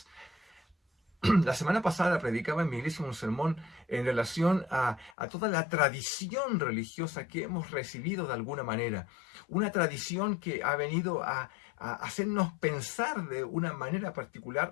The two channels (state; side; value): drops out; right; at 5.2 s